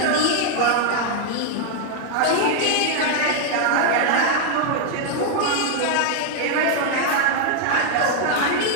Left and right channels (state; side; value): different; both; correlation 0.00